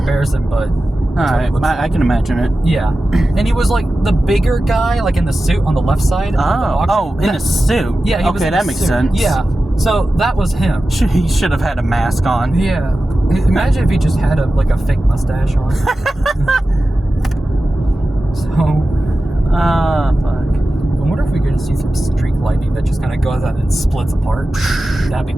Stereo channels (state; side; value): normal; both; correlation 0.94